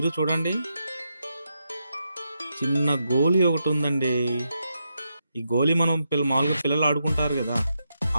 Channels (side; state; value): both; inverted; correlation -0.84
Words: చూడండి, చిన్న గోలీ ఒకటి ఉందండి. ఈ గోలీ మనం మామూలుగా పిల్లలు ఆడుకుంటారు కదా,